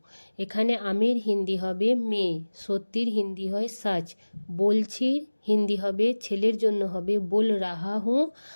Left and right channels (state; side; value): inverted; both; correlation -1.00